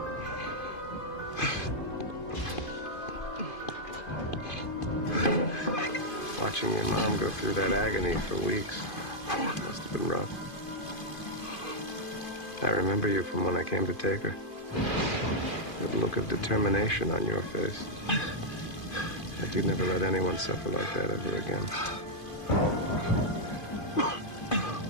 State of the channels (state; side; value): late; right; 2.5 ms